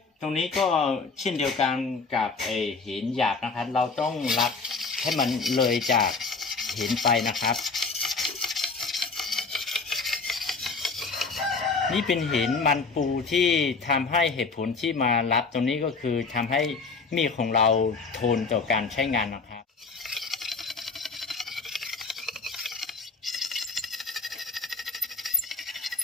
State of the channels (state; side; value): quieter; right; 4.4 dB